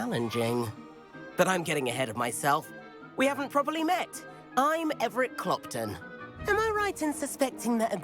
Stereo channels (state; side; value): identical; both; correlation 1.00